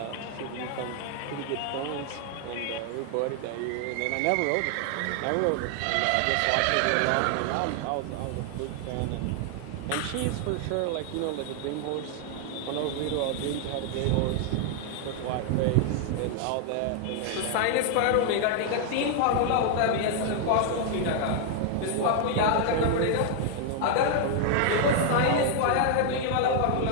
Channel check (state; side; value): different; both; correlation 0.00